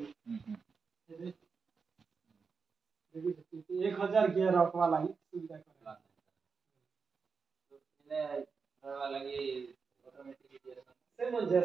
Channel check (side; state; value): left; quieter; 5.2 dB